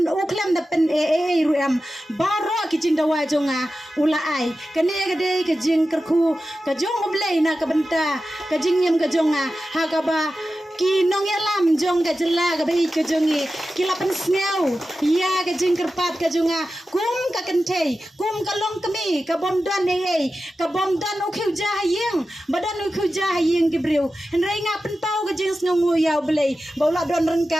da pen ruam baro kajing dawa jonga ula ai kane gade kajing kerku kajong oblei na kabenta kajing yam gajonga hagaba ki nong yalam jong ka jela ka bai ka jongi kilapan sneu ya ka jing kerpat ka jonga kum ka kentei kum ka long kami ka bomdan ka bomdan u khiu ja hayeng badan u khiu ja hayeng ki breu henrai nga pen pau ka jing sngu yaw blei bola don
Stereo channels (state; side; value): normal; both; correlation 0.93